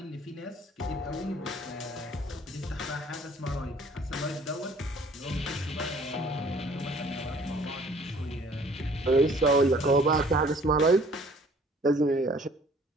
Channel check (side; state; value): both; normal; correlation 0.55